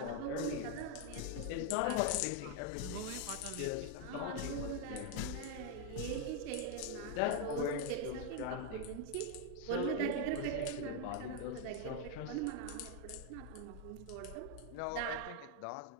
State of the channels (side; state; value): both; different; correlation 0.01